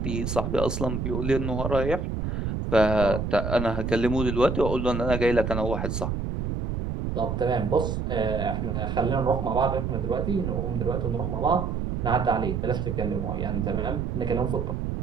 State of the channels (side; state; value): right; noise; rumble, 2 dB below the sound